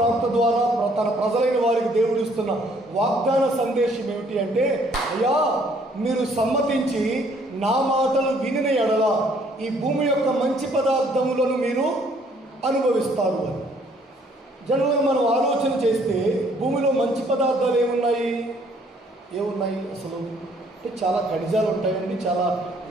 ద్వారా తన ప్రజలైన వారికి దేవుడు ఇస్తున్న వాగ్దాన సందేశం ఏమిటి అంటే, అయ్యా మీరు సమ్మతించి నా మాటలు వినిన ఎడల ఈ భూమి యొక్క మంచి పదార్థములను మీరు అనుభవిస్తారు అని. జనరల్గా మనం ఆలోచన చేస్తే భూమిలో మంచి పదార్థాలు ఏమున్నాయి అసలు అంటే చాలా ఖనిజాలు ఉంటాయండి. చాలా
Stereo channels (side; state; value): both; normal; correlation 0.63